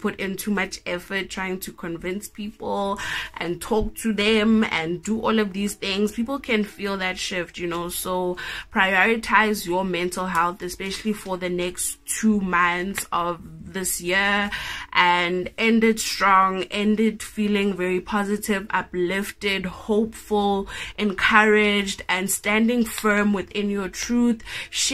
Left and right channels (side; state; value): both; identical; correlation 1.00